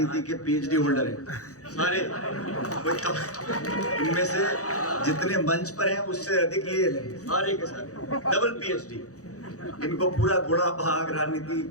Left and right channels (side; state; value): right; late; 0.66 ms